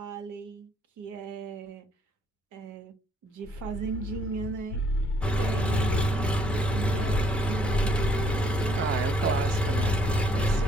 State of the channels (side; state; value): both; normal; correlation 0.66